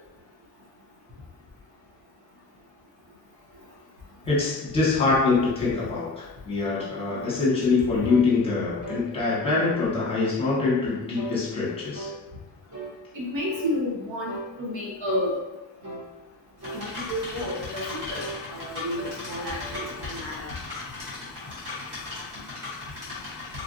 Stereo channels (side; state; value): right; quieter; 3.1 dB